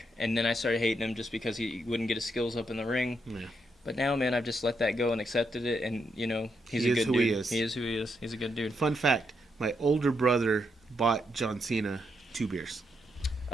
and then I started hating him just because he wouldn't get his skills up in the ring. Yeah. But now, man, I've just let that go and accepted it, and he's a good dude. He is who he is. He's a good dude. Fun fact: my older brother bought John Cena 2 beers.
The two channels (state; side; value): normal; both; correlation 0.80